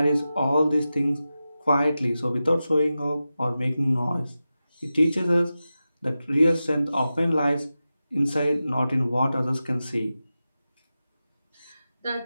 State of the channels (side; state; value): both; inverted; correlation -0.93